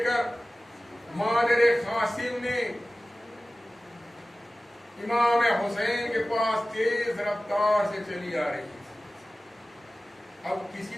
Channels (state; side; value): normal; both; correlation 0.97